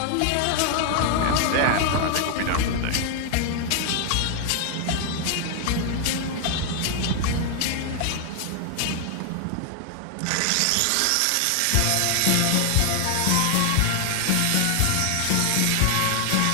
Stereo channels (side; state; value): both; different; correlation 0.00